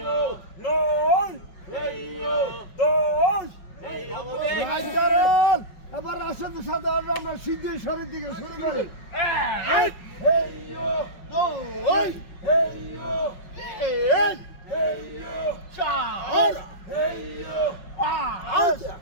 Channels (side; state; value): right; late; 5.4 ms